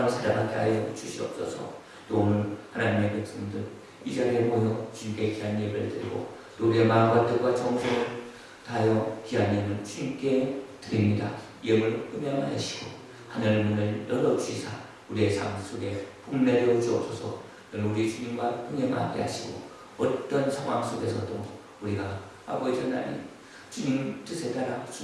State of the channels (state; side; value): identical; both; correlation 1.00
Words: 살아가게 하여 주시옵소서. 또 오늘 하나님의 백성들 이 자리에 모여 주님께 귀한 예배를 드리고 또 우리의 마음과 뜻과 정성을 다하여 귀한 예물 주님께 드립니다. 예물 음양하시고 하늘 문을 열어주시사 우리의 삶 속에 복 내려 주옵소서. 우리 주님과 동행하게 하시고 어떤 상황 속에서도 우리가 아버지 하나님 주님 뜻에 따라